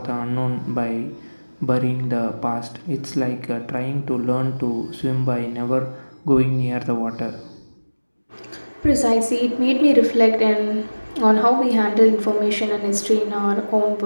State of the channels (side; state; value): both; inverted; correlation -1.00